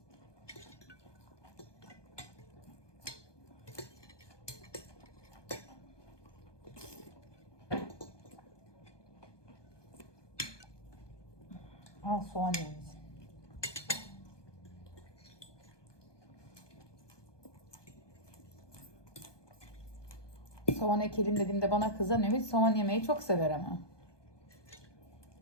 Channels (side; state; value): right; late; 1.2 ms